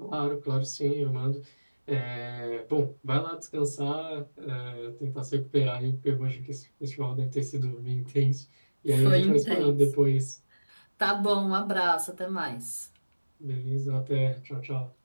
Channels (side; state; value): both; inverted; correlation -1.00